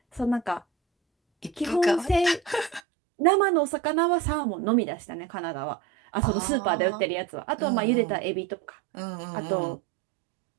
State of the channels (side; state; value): left; drops out; at 2.8 s